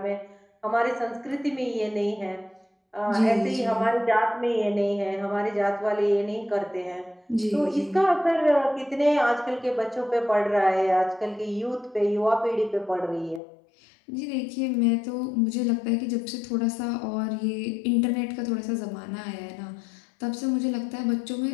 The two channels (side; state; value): right; drops out; at 13.4 s